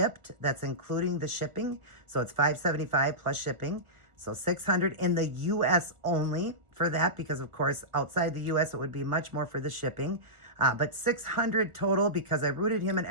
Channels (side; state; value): left; late; 1.5 ms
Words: That's including the shipping. So it's $575 plus shipping. So $600 in the U.S. only for that, because of course, outside the U.S. it would be much more for the shipping. But $600 total because I rooted him and